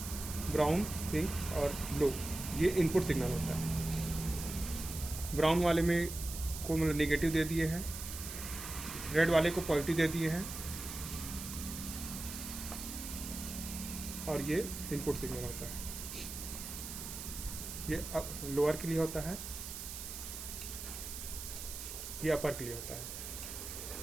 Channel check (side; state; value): right; noise; hiss, 8 dB below the sound